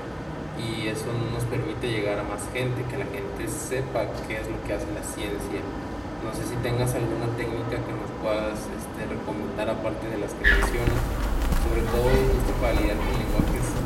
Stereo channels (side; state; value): both; identical; correlation 1.00